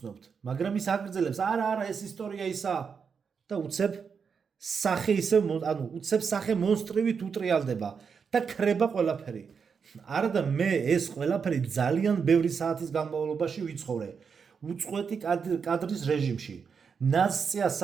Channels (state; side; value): quieter; left; 6.1 dB